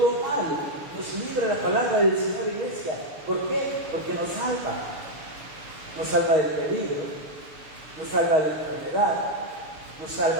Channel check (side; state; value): left; late; 6.9 ms